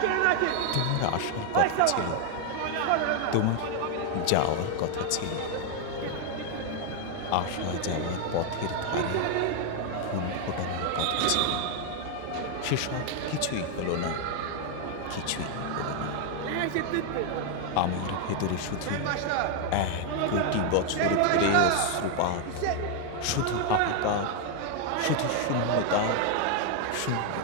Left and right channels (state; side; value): different; both; correlation 0.00